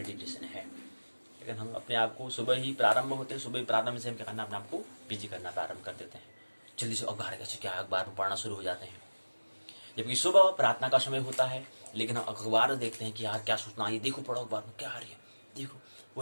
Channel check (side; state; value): both; inverted; correlation -1.00